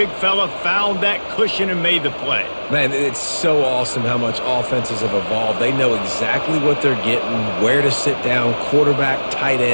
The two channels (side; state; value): both; inverted; correlation -1.00